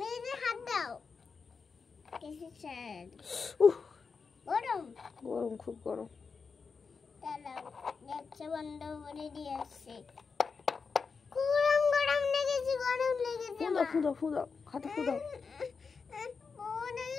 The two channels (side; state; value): right; quieter; 5.2 dB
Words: নিজে হাত দাও। কিসের? গরম গরম, খুব গরম। দাঁড়াও, গ্যাসটা বন্ধ করে দিয়ে আসছি। গরম গরম লেগেছে, গরম লেগেছে। ফুদাও ফুদাও ফুদাও, হাতে ফুদাও।